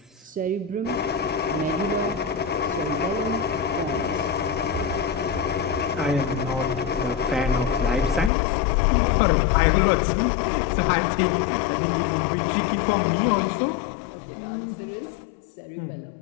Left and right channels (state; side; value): drops out; right; at 8.3 s